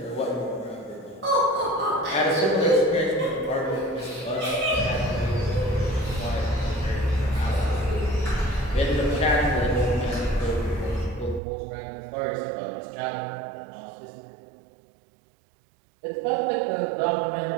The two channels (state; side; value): drops out; left; at 11.4 s